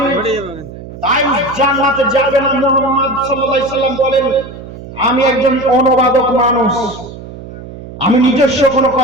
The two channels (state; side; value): noise; right; hum, 14 dB below the sound